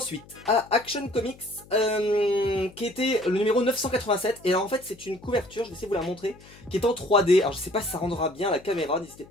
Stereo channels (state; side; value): noise; left; hum, 23 dB below the sound